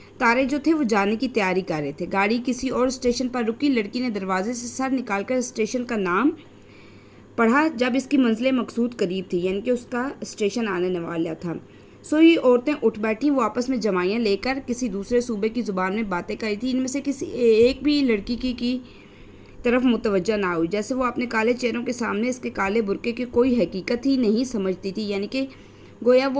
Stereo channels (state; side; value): identical; both; correlation 1.00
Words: تارے جو تھے وہ جانے کی تیاری کر رہے تھے۔ گاڑی کسی اور اسٹیشن پر رکی۔ لڑکی نے دروازے سے سر نکال کر اسٹیشن کا نام پڑھا۔ جب اس کی منزل مقصود قریب تھی، یعنی کہ اس کا اسٹیشن آنے والا تھا، سوئی عورتیں اٹھ بیٹھیں۔ وہ آپس میں جمائیاں لے کر کسی دوسرے صوبے کی زبان میں باتیں کر رہی تھیں۔ ان میں سے کسی ایک بھی لڑکی کی طرف متوجہ نہ ہوئی، جیسے وہ اپنے کالے چہروں کے سامنے اس کے کالے برقعے کی کوئی حقیقت ہی نہیں سمجھتی تھی، یعنی کہ گویا